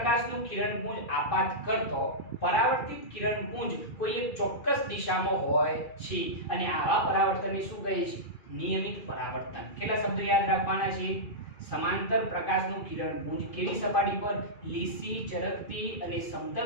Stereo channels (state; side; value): late; right; 2.4 ms